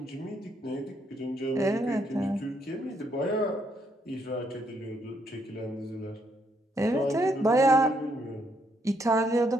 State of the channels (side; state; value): both; normal; correlation 0.73